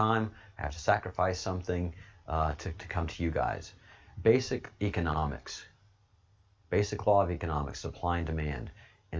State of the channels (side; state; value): both; identical; correlation 1.00